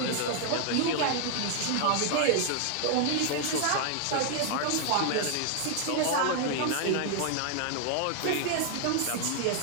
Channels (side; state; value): both; different; correlation 0.00